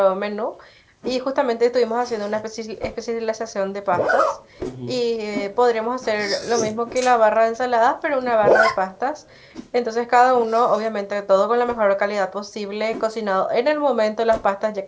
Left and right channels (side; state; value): both; identical; correlation 1.00